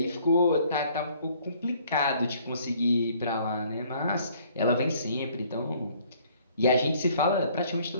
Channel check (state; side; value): inverted; both; correlation -0.60